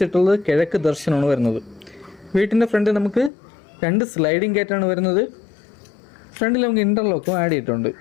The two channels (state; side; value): drops out; right; at 3.3 s